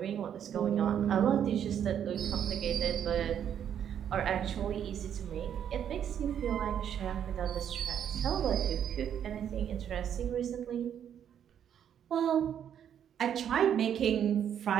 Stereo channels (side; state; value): left; quieter; 9.2 dB